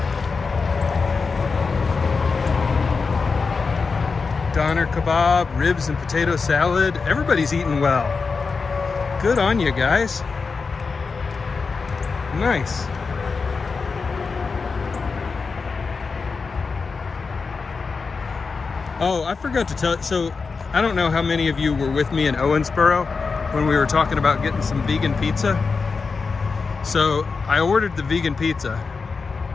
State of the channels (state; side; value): quieter; right; 4.7 dB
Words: Doner kebab, ribs and potato salad. Everybody's eating well. Good on you guys. Nice. Oh, I forgot to tell. So I don't know how many of you were with me in Owensboro when we were talking about getting some vegan pizza. So I ordered the vegan pizza,